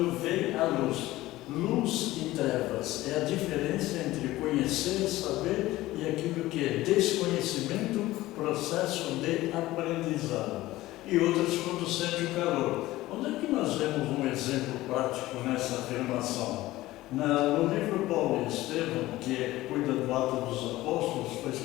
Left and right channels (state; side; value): quieter; right; 17.1 dB